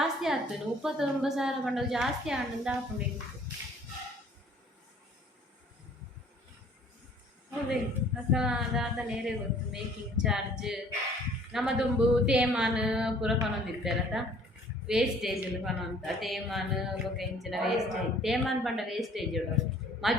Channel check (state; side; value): normal; both; correlation 0.55